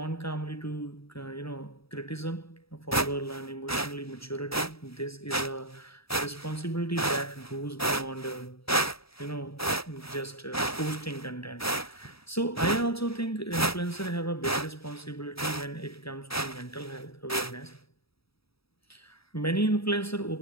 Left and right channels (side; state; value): right; late; 0.77 ms